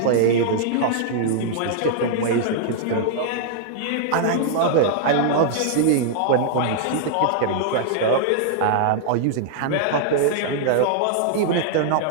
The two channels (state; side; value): different; both; correlation -0.01